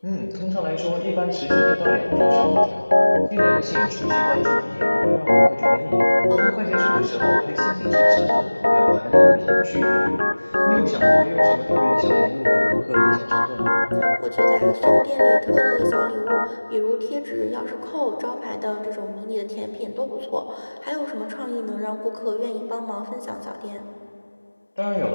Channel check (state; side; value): inverted; both; correlation -1.00